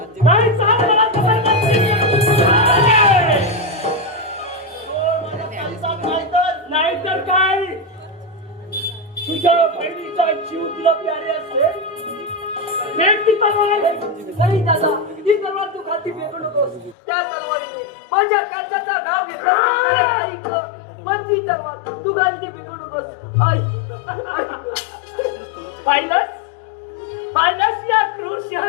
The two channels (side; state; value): right; drops out; at 16.9 s